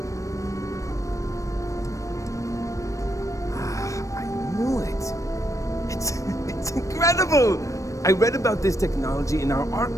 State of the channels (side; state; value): right; late; 0.16 ms